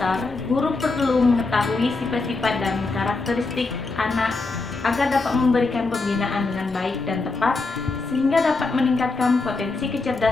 guru perlu mengetahui sifat-sifat dan karakteristik anak agar dapat memberikan pembinaan dengan baik dan tepat, sehingga dapat meningkatkan potensi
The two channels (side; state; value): right; quieter; 3.7 dB